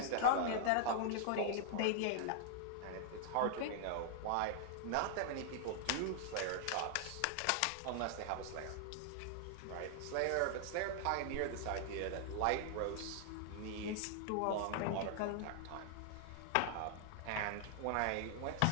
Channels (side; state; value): both; different; correlation 0.00